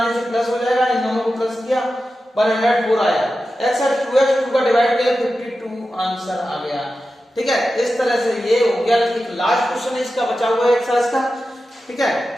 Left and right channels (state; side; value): normal; both; correlation 0.92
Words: से प्लस हो जाएगा, इन दोनों को प्लस किया 104 आया, x और 2x 2 का डिवाइड किया 52 आंसर आ गया। ठीक है, इस तरह से ये हो गया। एक लास्ट क्वेश्चन है इसका बचा हुआ है एक्सरसाइज का, ठीक है,